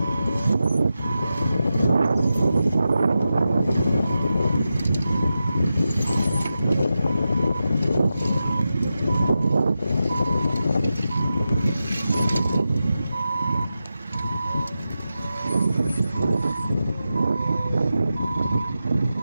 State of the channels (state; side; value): inverted; both; correlation -0.91